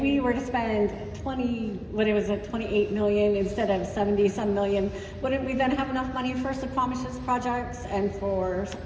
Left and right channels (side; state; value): both; identical; correlation 1.00